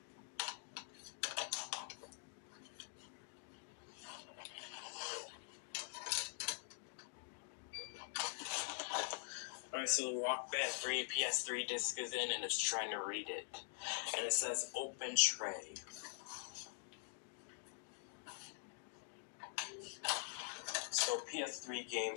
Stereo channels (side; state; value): right; silent; digital silence